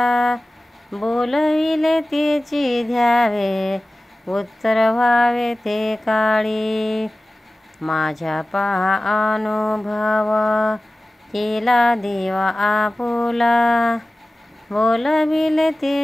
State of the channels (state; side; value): normal; both; correlation 0.97